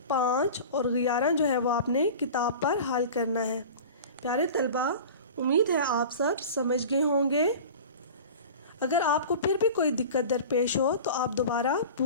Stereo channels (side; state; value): both; inverted; correlation -0.36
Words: 5 اور 11 جو ہے وہ آپ نے کتاب پر حل کرنا ہے۔ پیارے طلبہ، امید ہے آپ سب سمجھ گئے ہوں گے۔ اگر آپ کو پھر بھی کوئی دقت درپیش ہو تو آپ دوبارہ